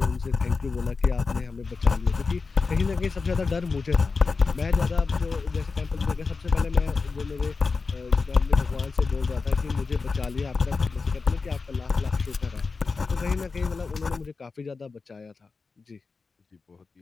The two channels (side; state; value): right; quieter; 4.5 dB